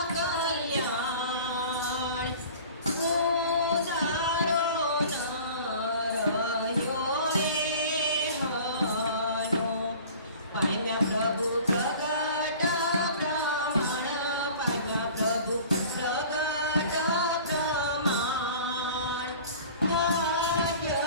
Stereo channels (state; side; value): inverted; both; correlation -0.43